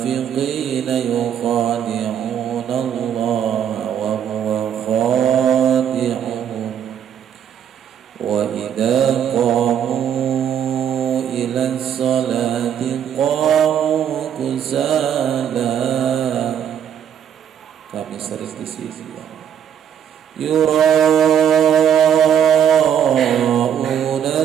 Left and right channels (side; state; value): left; quieter; 9.0 dB